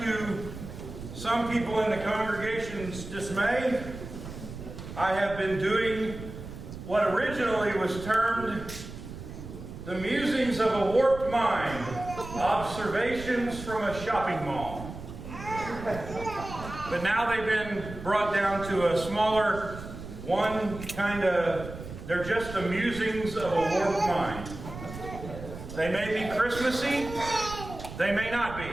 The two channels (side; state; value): right; noise; rumble, 11 dB below the sound